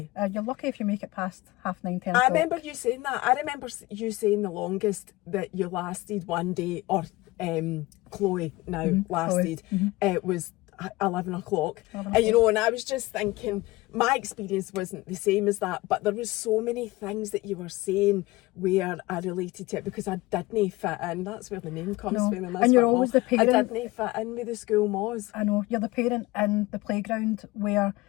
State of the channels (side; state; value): right; quieter; 20.3 dB